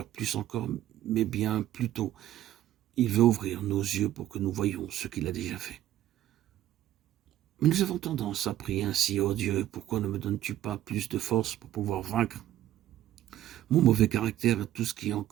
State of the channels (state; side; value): quieter; left; 12.9 dB